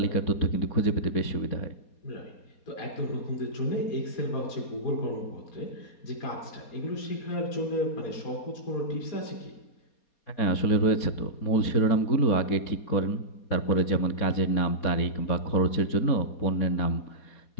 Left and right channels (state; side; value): late; right; 4.2 ms